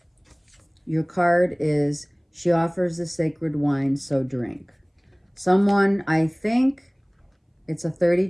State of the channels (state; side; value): identical; both; correlation 1.00